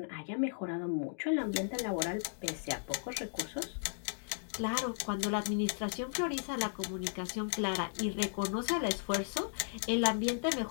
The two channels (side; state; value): right; silent; digital silence